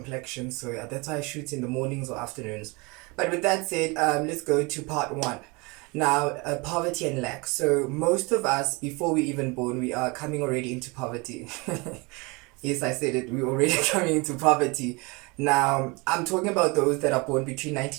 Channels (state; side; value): quieter; left; 27.2 dB